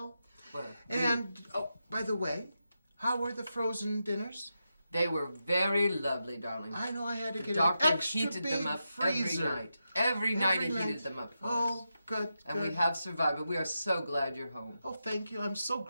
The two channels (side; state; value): both; inverted; correlation -0.87